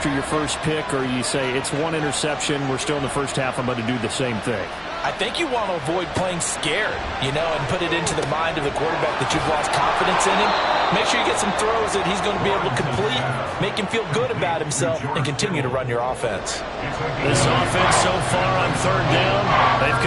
your first pick, or you say it's one interception, we're still in the first half, I'm going to do the same thing? I think you want to avoid playing scared, and put it into the mind of the quarterback that you've lost confidence in him. Make sure you get some throws that he's going to be able to complete, make him feel good about himself, and continue to run your offense. This offense so far on third down, they've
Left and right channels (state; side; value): identical; both; correlation 1.00